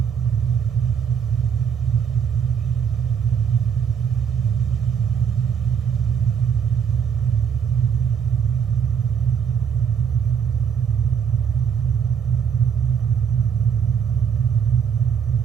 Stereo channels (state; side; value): quieter; left; 7.3 dB